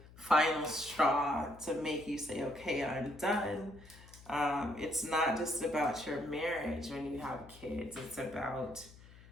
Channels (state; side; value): noise; left; hum, 20 dB below the sound